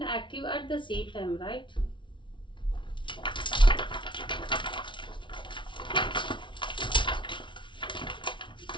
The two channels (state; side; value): late; right; 0.24 ms